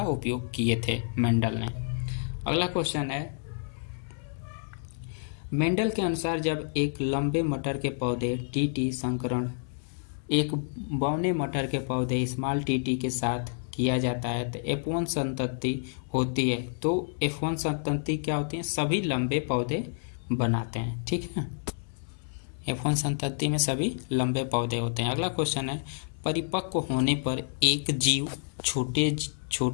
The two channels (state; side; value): silent; right; 59 dB below the other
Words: उपयोग किए थे मेंडल ने। अगला क्वेश्चन है, मेंडल के अनुसार जब एक लंबे मटर के पौधे टीटी संकरण एक बौने मटर के पौधे स्मॉल टीटी के साथ किया जाता है तो F1 संतति होती है। तो F1 संतति क्या होती है? सभी लंबे पौधे बनाते हैं। ठीक है, F1 संतति में सभी लंबे पौधे होते हैं। अगला क्वेश्चन है, परिपक्व होने पर एक जीव छोटे